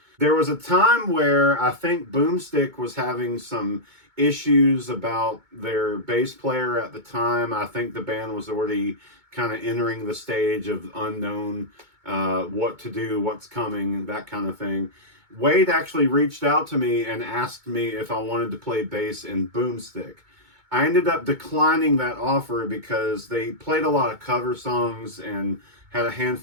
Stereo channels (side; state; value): left; late; 2.2 ms